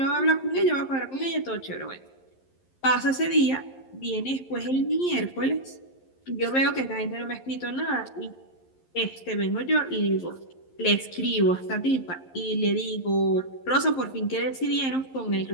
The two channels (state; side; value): late; right; 11 ms